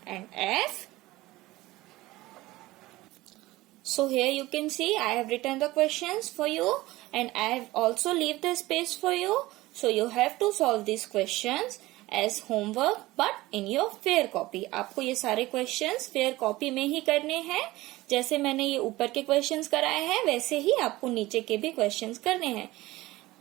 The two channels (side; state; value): left; quieter; 18.6 dB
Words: and F. So here you can see I have written the questions for you, and I have also leave the space for you. So you have to solve these questions as homework, but in your fair copy. आपको ये सारे questions fair copy में ही करने हैं. जैसे मैंने ये ऊपर के questions कराए हैं, वैसे ही आपको नीचे के भी questions करने हैं.